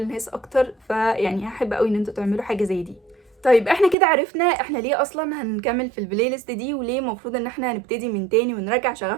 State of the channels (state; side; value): drops out; left; at 4.0 s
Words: اكتر. فيعني هحب قوي ان انتوا تعملوا حاجه زي دي. طيب احنا كده عرفنا احنا ليه اصلا هنكمل في البلاي ليست دي، وليه المفروض ان احنا هنبتدي من تاني ونرجع